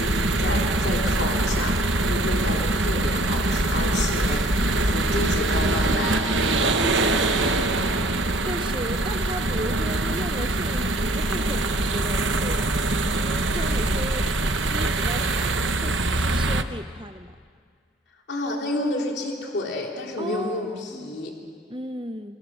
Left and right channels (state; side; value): normal; both; correlation 0.56